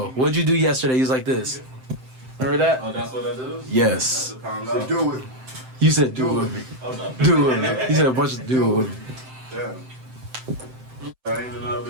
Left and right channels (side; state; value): left; late; 7.7 ms